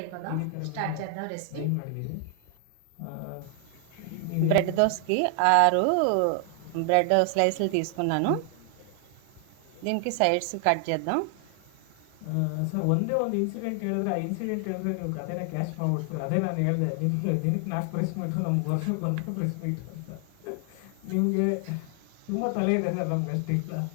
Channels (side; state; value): both; different; correlation 0.00